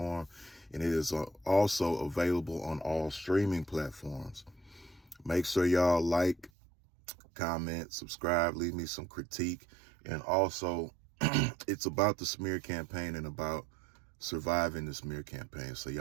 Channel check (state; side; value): drops out; left; at 6.5 s